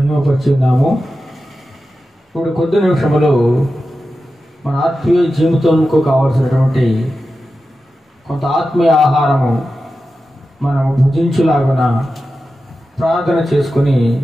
ఇప్పుడు కొద్ది నిమిషములు మన ఆత్మీయ జీవితంకు కావలసినటువంటి కొంత ఆత్మీయ ఆహారము మనము భుజించులాగున ప్రార్థన చేసుకుని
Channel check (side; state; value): both; normal; correlation 0.92